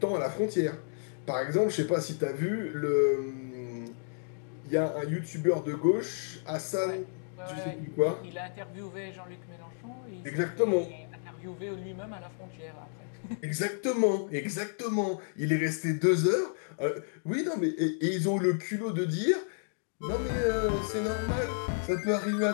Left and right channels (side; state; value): right; silent; digital silence